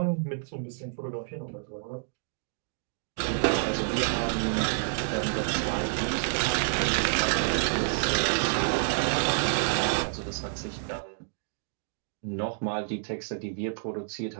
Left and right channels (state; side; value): silent; left; digital silence